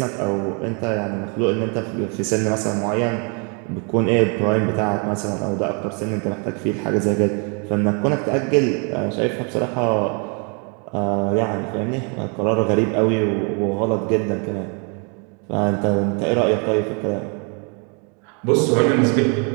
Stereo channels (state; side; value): quieter; left; 36.1 dB